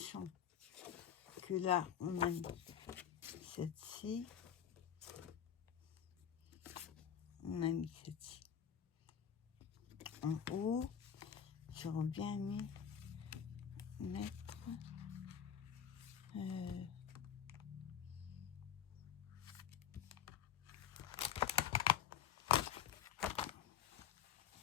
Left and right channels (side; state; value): right; quieter; 9.2 dB